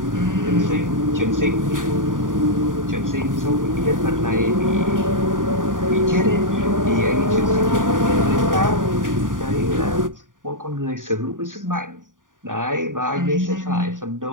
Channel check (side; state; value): left; late; 0.89 ms